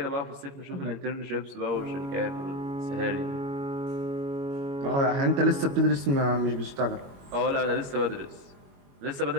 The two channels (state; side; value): late; left; 22 ms